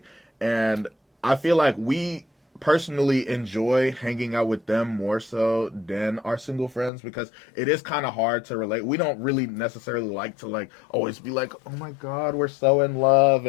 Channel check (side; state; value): right; drops out; at 6.9 s